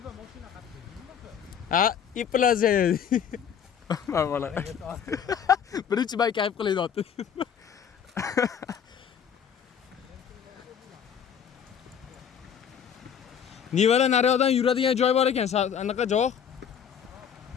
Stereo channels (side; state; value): right; quieter; 8.0 dB